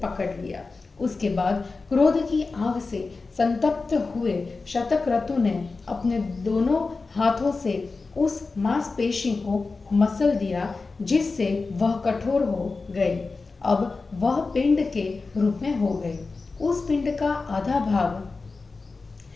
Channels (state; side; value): quieter; right; 4.0 dB